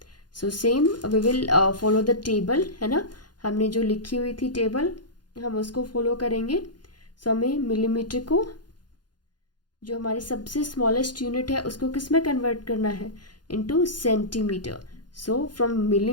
So same we will follow the table, है ना. हमने जो लिखी हुई थी टेबल, हम उसको फॉलो करेंगे. सो हमें मिलीमीटर को, जो हमारी सबसे स्मॉलेस्ट यूनिट है, उसको किस में कन्वर्ट करना है? Into centimetre. So from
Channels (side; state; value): right; late; 0.70 ms